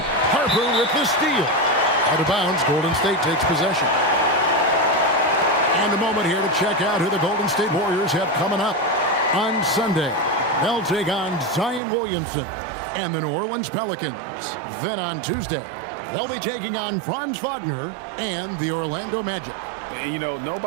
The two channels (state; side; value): drops out; left; at 11.8 s